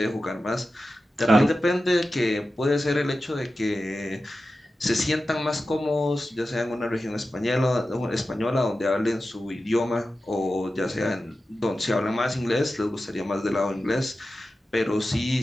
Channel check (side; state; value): both; normal; correlation 0.93